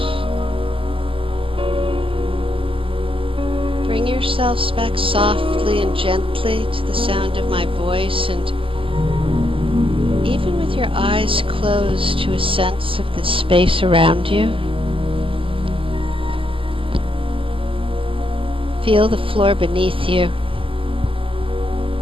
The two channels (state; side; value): late; left; 0.25 ms